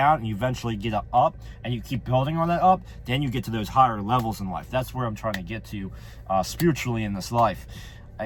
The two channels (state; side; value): identical; both; correlation 1.00